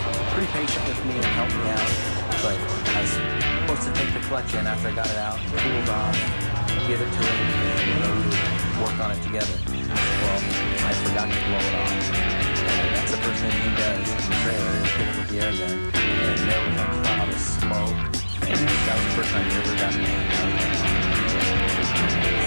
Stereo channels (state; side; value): inverted; both; correlation -1.00